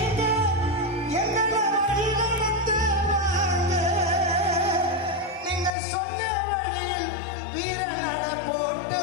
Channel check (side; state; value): right; drops out; at 5.7 s